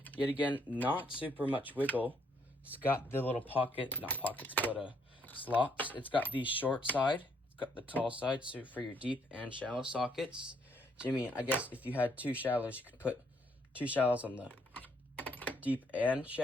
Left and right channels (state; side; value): normal; both; correlation 0.70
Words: Yet again, not super much wiggle. It's got the little pocket, not pockets, but slots. It's got the short side. It's got the tall side, so for your deep and shallow sockets. Jimmy, I guess if you had 2 shallows, you could put 2 shallows on the deep and